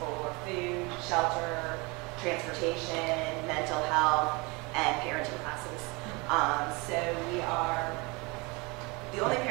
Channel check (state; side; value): quieter; left; 27.0 dB